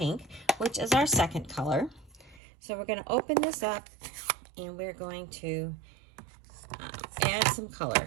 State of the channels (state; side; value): drops out; left; at 2.4 s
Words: which is our second color. So we're going to open this up and we're going to add some